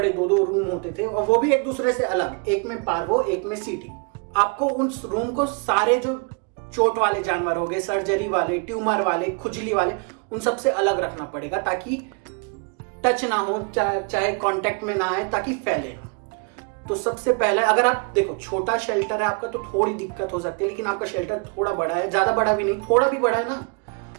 दो रूम होते थे और वो भी एक दूसरे से अलग, एक में पार्वो एक में सीटी। आपको उस रूम को सारे जो चोट वाले जानवर हो गए, सर्जरी वाले, ट्यूमर वाले, खुजली वाले, उन सबसे अलग रखना पड़ेगा ताकि टच ना हो, चाहे कांटेक्ट में ना आए, ताकि फैले ना। तो सबसे पहले अगर आप देखो छोटा शेल्टर है आपका तो थोड़ी दिक्कत हो सकती है, लेकिन आपका शेल्टर थोड़ा बड़ा है, ज्यादा बड़ा भी नहीं, थोड़ा भी बड़ा है ना,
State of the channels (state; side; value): quieter; left; 34.0 dB